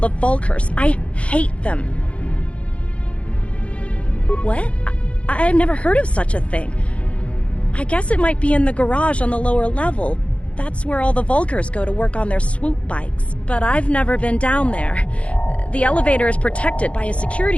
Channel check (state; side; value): late; right; 0.062 ms